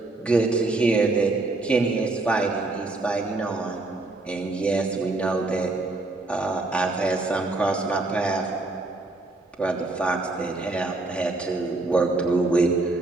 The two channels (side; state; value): left; quieter; 3.1 dB